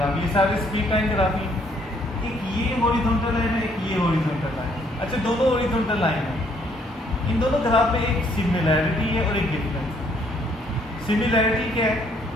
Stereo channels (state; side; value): normal; both; correlation 0.66